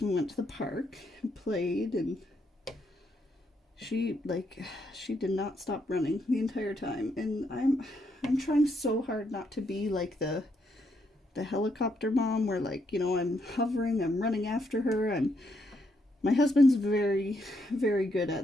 We went to the park and played, and she did not stop running the entire time. And I'm trying so hard not to be like the helicopter mom where, like, you know, I'm hovering, I'm running after her. My husband's very, very good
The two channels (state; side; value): normal; both; correlation 0.76